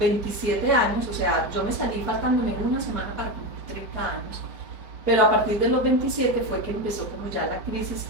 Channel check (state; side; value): late; left; 4.7 ms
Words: años, o sea, yo me salí faltándome una semana para cumplir 30 años, pero a partir de los 27 fue que empezó como ya la crisis